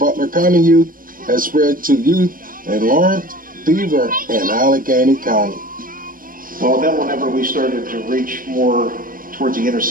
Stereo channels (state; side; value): late; left; 0.41 ms